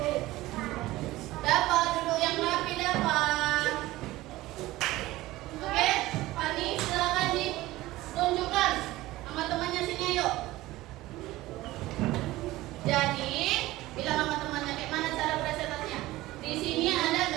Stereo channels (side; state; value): left; quieter; 17.7 dB